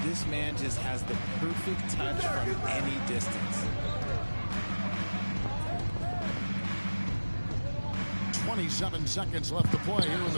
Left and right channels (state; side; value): inverted; both; correlation -1.00